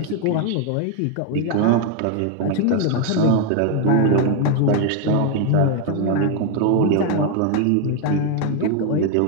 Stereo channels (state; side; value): different; both; correlation 0.01